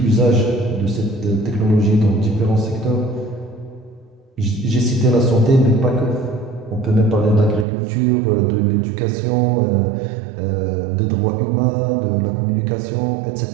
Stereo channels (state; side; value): drops out; left; at 7.7 s